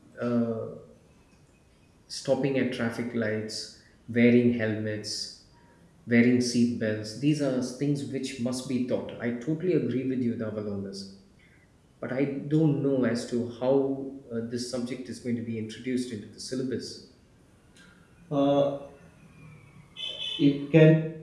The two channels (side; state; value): both; identical; correlation 1.00